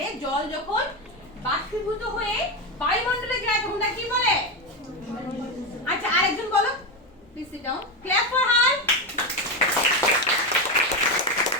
জল যখন বাষ্পীভূত হয়ে বায়ুমণ্ডলে যায় তখন তাকে কি বলে। আচ্ছা আরেকজন বলো, please sit down, clap for her.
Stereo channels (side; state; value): both; normal; correlation 0.12